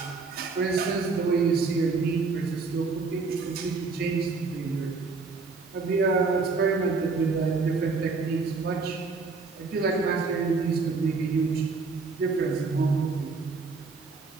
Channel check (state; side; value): quieter; left; 4.4 dB